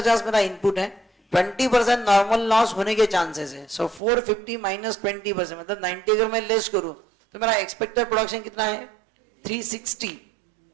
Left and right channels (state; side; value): drops out; left; at 4.0 s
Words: मेरा इनपुट है, 20% नॉर्मल लॉस होने के चांसेस है. सो 450 माइनस 20% मतलब 90 अगर मैं लेस करूं तो मेरा एक्सपेक्टेड प्रोडक्शन कितना है, 360.